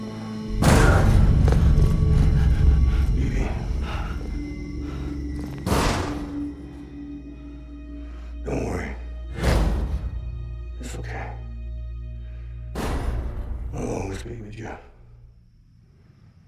Don't worry. It's okay. I'll always be with you.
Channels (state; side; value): identical; both; correlation 1.00